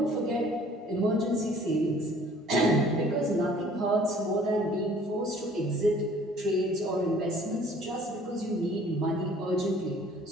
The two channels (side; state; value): both; normal; correlation 0.54